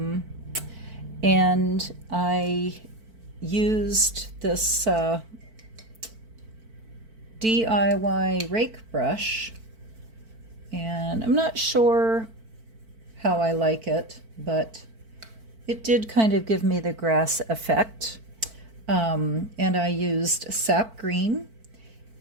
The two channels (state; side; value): late; left; 4.5 ms